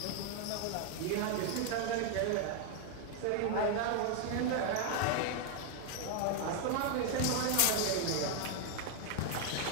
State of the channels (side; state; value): both; different; correlation 0.00